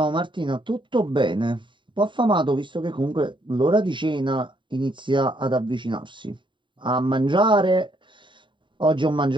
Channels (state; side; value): late; left; 0.23 ms